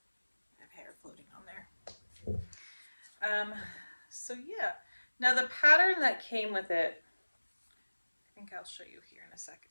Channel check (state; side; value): inverted; both; correlation -1.00